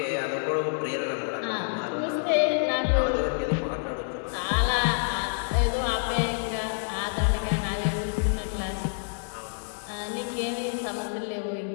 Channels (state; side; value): silent; right; digital silence